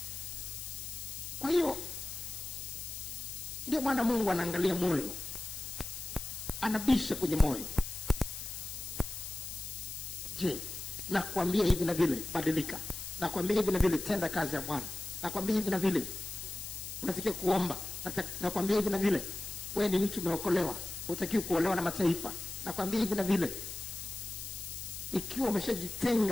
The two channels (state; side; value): noise; left; hiss, 7 dB below the sound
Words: Kwa hiyo ndio maana Mungu anaangalia moyo, anabisha kwenye moyo. Je, nakwambia hivi na vile, badilika. Nakwambia hivi na vile, tenda kazi ya Bwana. Nakwambia hivi na vile, unatakiwa kuomba. Nakwambia hivi na vile, wewe ni mtu umeokolewa, hutakiwi kuolewa na mataifa. Nakwambia hivi na vile. Ikiwa